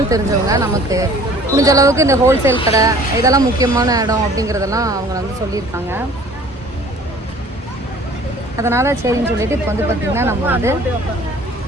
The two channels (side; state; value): both; normal; correlation 0.51